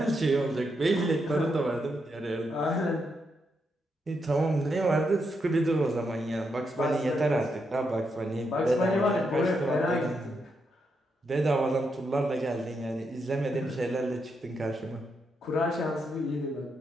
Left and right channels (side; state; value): both; normal; correlation 0.81